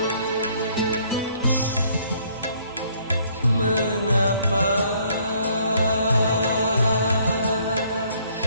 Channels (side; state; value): both; inverted; correlation -0.64